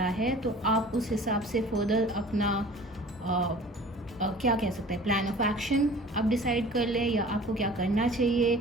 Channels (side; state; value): both; normal; correlation 0.45